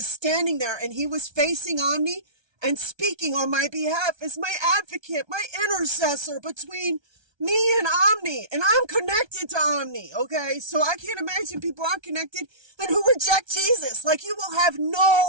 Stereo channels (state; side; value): late; left; 1.3 ms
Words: standing there, and he was facing Omni and speaking on my behalf as my advocate, my intercessor between me and Omni. And I'm connected to Omni, okay? So I can't imagine people aren't connected and who reject Jesus. Like, you will have